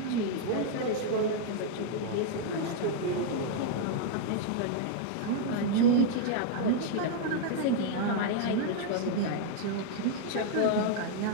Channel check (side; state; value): both; different; correlation -0.01